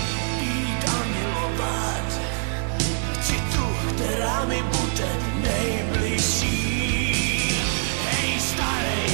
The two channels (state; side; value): silent; left; 62 dB below the other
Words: pít a milovat, chci tu, která mi bude nejbližší. Hej